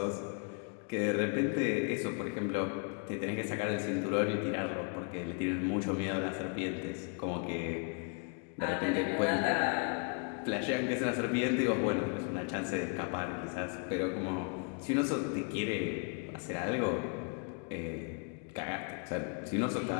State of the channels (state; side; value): quieter; right; 36.3 dB